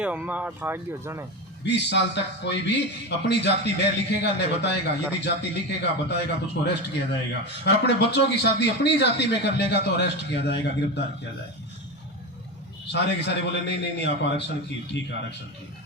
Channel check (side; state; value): both; normal; correlation 0.20